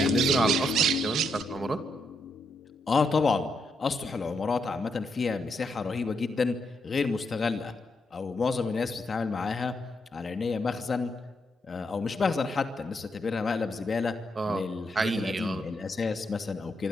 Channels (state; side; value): normal; both; correlation 0.79